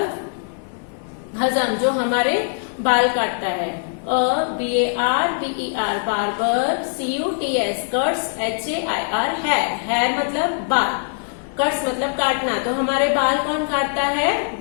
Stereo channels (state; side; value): silent; right; digital silence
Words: हजम, जो हमारे बाल काटता है. BARBER, barber. CUTS, cuts. HAIR, hair मतलब बाल. कट्स मतलब काटना, तो हमारे बाल कौन काटता है?